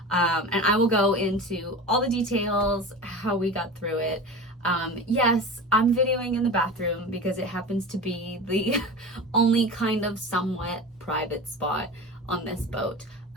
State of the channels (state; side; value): normal; both; correlation 0.31